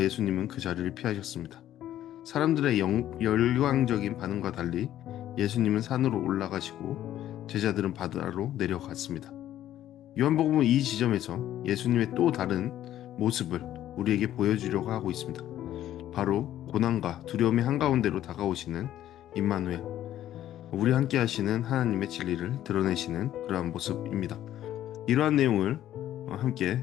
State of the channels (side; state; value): right; quieter; 12.4 dB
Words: 그 자리를 피하셨습니다. 사람들의 열광적인 반응과 달리 예수님은 산으로 올라가시고 제자들은 바다로 내려갔습니다. 요한복음은 이 지점에서 예수님의 또 다른 모습을 우리에게 보여주려고 하고 있습니다. 바로 고난과 두려움의 한가운데로 다가오시는 임마누엘, 우리 함께 하시는 하나님의 진리를 드러내시는 그러한 모습입니다. 이러한 내용을 함께